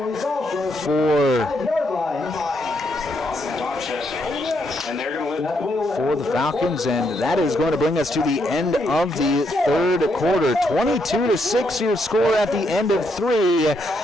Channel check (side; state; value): both; normal; correlation 0.77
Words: for... And they're going to for the Falcons, and that is going to bring us to the end of the third quarter. 22-6 your score at the end of 3.